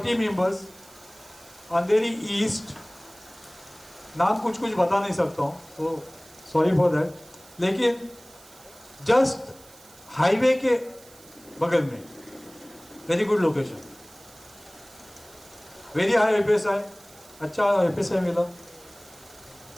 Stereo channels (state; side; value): noise; right; hiss, 23 dB below the sound